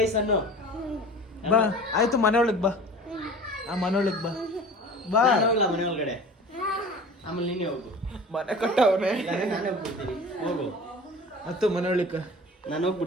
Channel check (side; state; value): both; normal; correlation 0.40